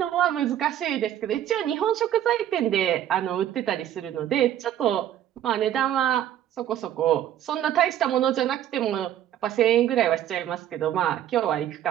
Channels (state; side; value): quieter; left; 11.2 dB